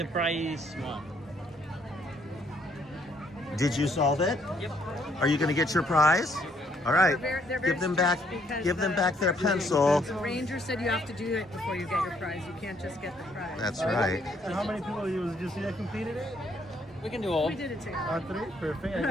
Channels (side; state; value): both; normal; correlation 0.68